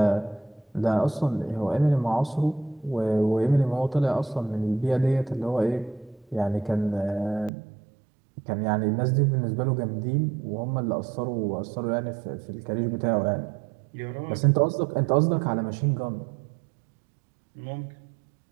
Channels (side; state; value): left; drops out; at 7.5 s